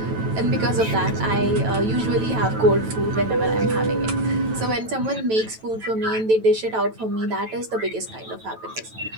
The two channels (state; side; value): late; left; 9.1 ms